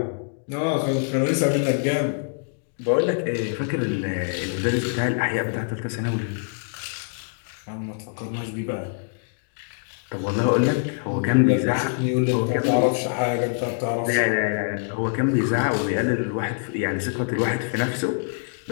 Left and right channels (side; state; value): right; silent; digital silence